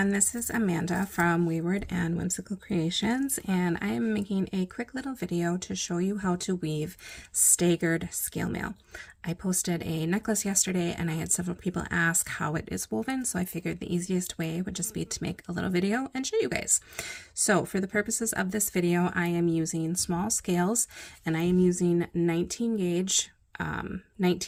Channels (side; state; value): both; identical; correlation 1.00